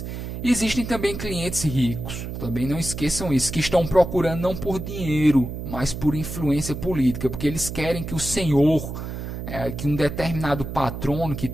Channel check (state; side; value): noise; right; hum, 7 dB below the sound